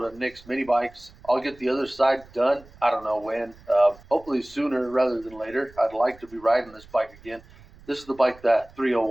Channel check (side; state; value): right; noise; rumble, 24 dB below the sound